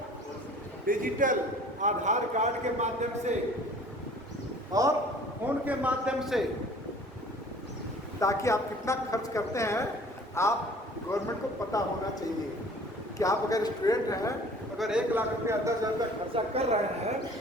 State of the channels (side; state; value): both; normal; correlation 0.49